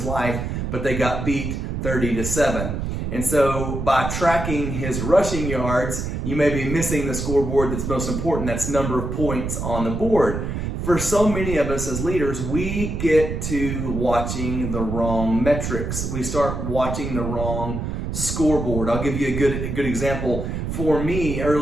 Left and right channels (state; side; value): noise; right; rumble, 3 dB below the sound